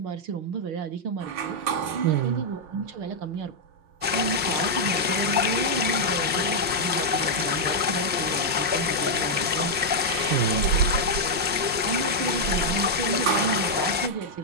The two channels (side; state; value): left; late; 5.6 ms